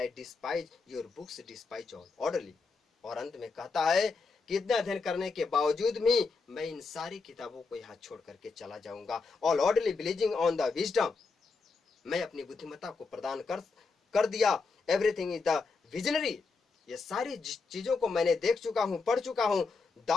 despise your books despise all orderly, और अंत में कहता है कि इतना अध्ययन करने के बावजूद भी मैं इन सारी किताबों को यहाँ छोड़ करके चला जाऊंगा। All orderly believing on the wisdom, मैं अपनी बुद्धिमत्ता को प्रदान कर दिया। एवरीथिंग इज द विजनरी, ये सारी चीजों को मैंने देख चुका हूं, पढ़ चुका हूं।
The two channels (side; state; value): right; quieter; 4.4 dB